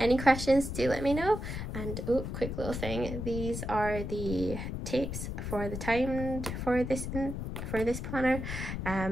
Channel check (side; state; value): left; noise; rumble, 5 dB below the sound